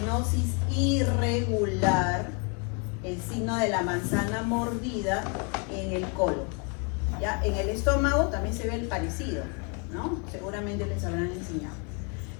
irregular, el signo de la manzana mordida en el colon. ¿Ya? En el estómago también se ve el parecido, ¿no? Seguramente les habrán enseñado.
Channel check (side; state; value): right; quieter; 35.7 dB